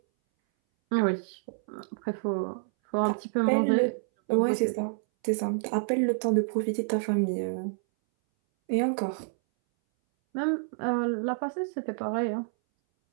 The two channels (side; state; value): left; silent; 59 dB below the other